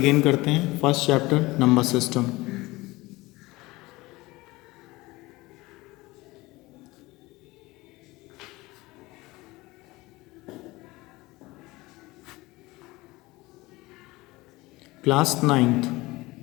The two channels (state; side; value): quieter; right; 20.7 dB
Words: करते हैं। First chapter number system. Class 9th।